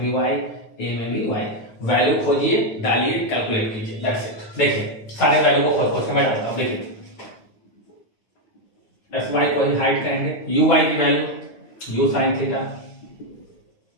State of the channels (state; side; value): late; right; 9.2 ms